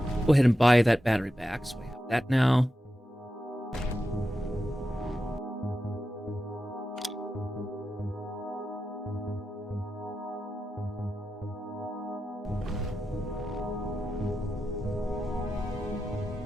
Go ahead and buy that battery back, so we have that now.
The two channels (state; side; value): normal; both; correlation 0.90